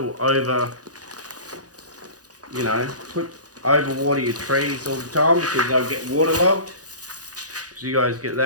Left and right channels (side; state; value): left; late; 0.68 ms